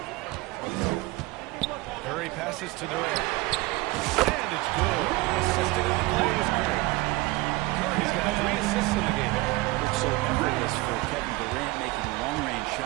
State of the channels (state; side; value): quieter; left; 20.9 dB